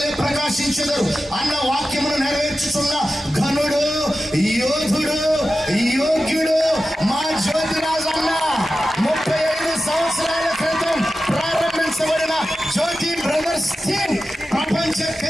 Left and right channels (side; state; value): both; normal; correlation 0.93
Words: ప్రకాశించెదరు అన్న వాక్యమును నెరవేర్చుచున్న ఘనుడు యోధుడు యోగ్యుడు మా జ్యోతిరాజు అన్న. 35 సంవత్సరాల క్రితం ప్రారంభించబడిన జ్యోతి బ్రదర్స్ టీం ప్రపంచ